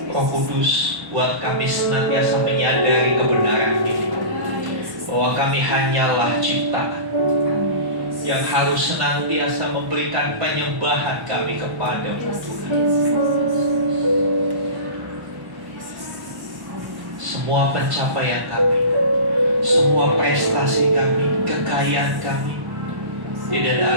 Roh Kudus, buat kami senantiasa menyadari kebenaran ini, bahwa kami hanyalah ciptaan yang harus senantiasa memberikan penyembahan kami kepada-Mu Tuhan. Semua pencapaian kami, semua prestasi kami, kekayaan kami, tidak ada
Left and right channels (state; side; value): late; left; 1.1 ms